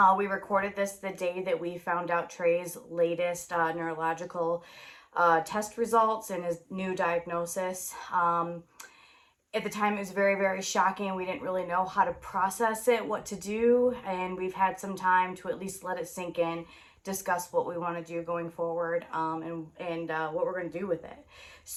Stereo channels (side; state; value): both; identical; correlation 1.00